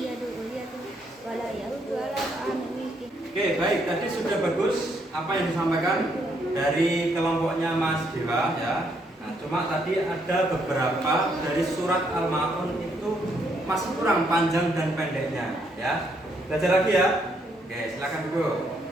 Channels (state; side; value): normal; both; correlation 0.73